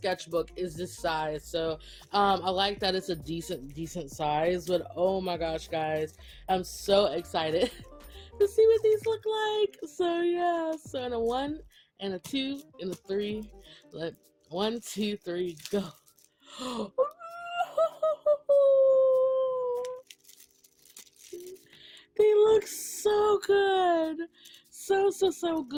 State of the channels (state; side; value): identical; both; correlation 1.00